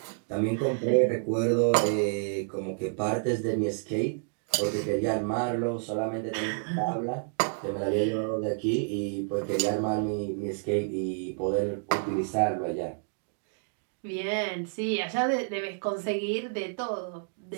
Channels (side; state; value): left; silent; digital silence